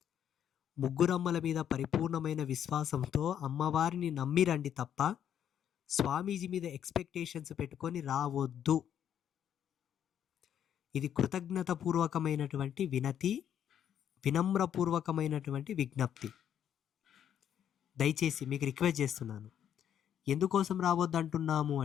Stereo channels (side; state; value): right; quieter; 9.5 dB